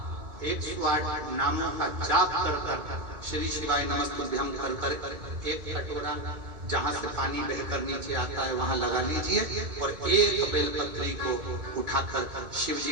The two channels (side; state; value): left; late; 2.4 ms